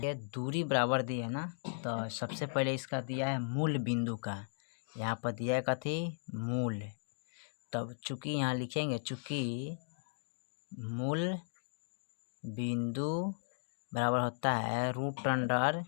ये दूरी बराबर दी है ना, तो सबसे पहले इसका दिया है मूल बिंदु का, यहाँ पर दिया है कथी मूल, तब चूंकि यहाँ लिखेंगे चूंकि मूल बिंदु बराबर होता है √x²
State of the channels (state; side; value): silent; right; digital silence